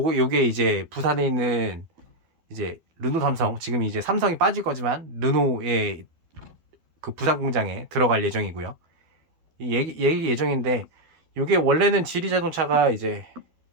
이제 부산에 있는 이제 르노 삼성 지금 이제 삼성이 빠질 거지만 르노의 그 부산 공장에 들어갈 예정이고요. 이 얘기 예정인데 이게 원래는 지리 자동차가 이제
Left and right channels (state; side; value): late; left; 12 ms